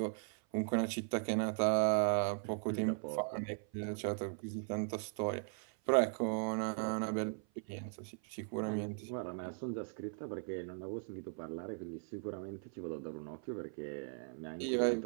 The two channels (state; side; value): silent; left; 52 dB below the other